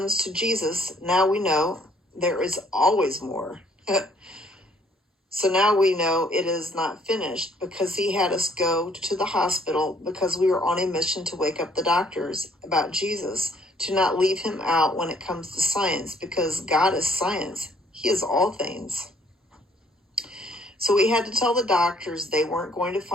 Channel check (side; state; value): both; normal; correlation 0.64